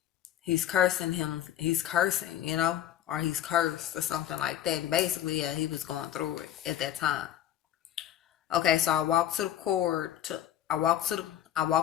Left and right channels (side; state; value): right; quieter; 11.5 dB